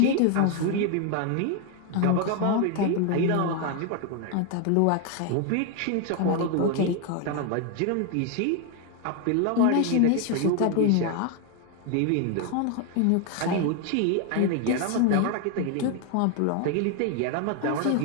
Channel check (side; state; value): both; different; correlation 0.01